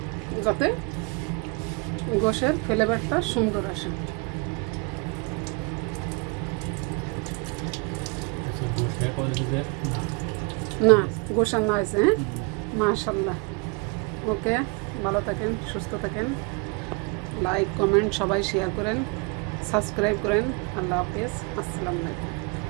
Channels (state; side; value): quieter; left; 30.7 dB